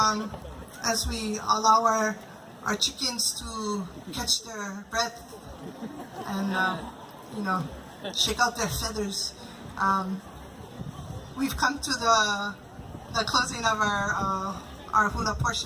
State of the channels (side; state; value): both; identical; correlation 1.00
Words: as we allow our chickens to catch their breath and shake out their feathers, we've come to the closing of our hula